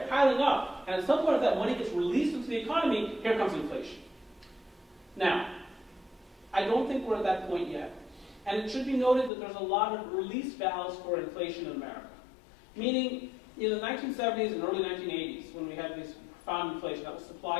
piling up. And at some point, if that money gets released into the economy, here comes inflation. Now, I don't think we're at that point yet. And it should be noted that there's a lot of release valves for inflation in America. Meaning, in the 1970s and early 1980s, when we had this profound inflation, that was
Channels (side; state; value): right; drops out; at 9.3 s